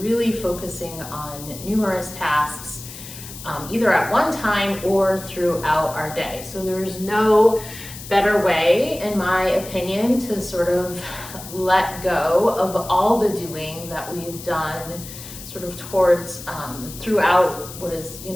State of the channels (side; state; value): left; noise; hiss, 13 dB below the sound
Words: focusing on numerous tasks, either at one time or throughout our day. So there's no better way, in my opinion, to sort of let go of all the doing that we've done sort of towards throughout what is,